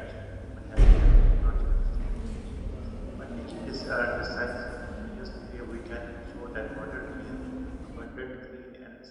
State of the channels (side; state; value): both; identical; correlation 1.00